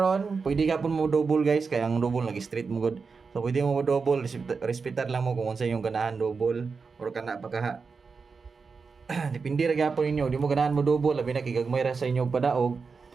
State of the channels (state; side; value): quieter; left; 4.9 dB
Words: pwede gapon mo double guys, kaya ang double lagi straight mo good. So pwede mo double, respetar lang mo kung unsa yung ganahan double or kana pa ka. Depende ra gapon ninyo, di mo ganahan mo double, labi na kigagmay ra sa inyo padaog.